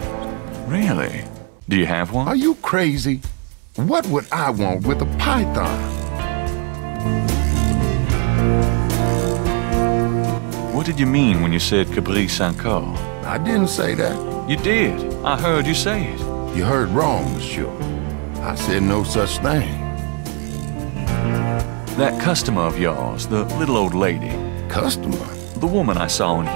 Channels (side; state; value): left; quieter; 35.1 dB